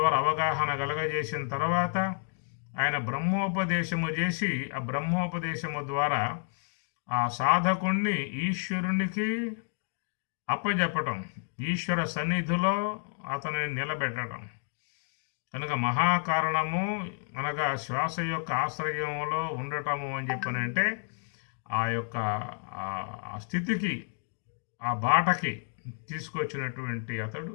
అవగాహన కలగజేసిన తర్వాత ఆయన బ్రహ్మోపదేశము చేసి ఆ బ్రహ్మోపదేశము ద్వారా ఆ సాధకుణ్ణి ఈశ్వరునికి అప్పజెప్పటం, ఈశ్వర సన్నిధిలో అతనిని నిలబెట్టడం. కనుక మహాకారణము అనగా శ్వాస యొక్క ఆశ్రయంలో ఉండటము అని చెప్పనంటే ఆ యొక్క ఆ స్థితికి, ఆ బాటకి తీసుకొచ్చినటువంటి అతడు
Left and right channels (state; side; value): silent; right; 58 dB below the other